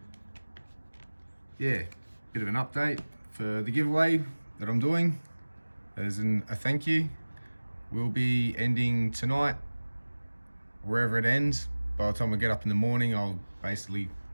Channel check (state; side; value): inverted; both; correlation -1.00